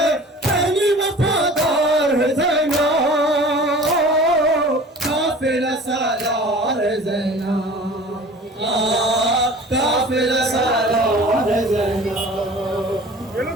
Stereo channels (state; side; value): normal; both; correlation 0.43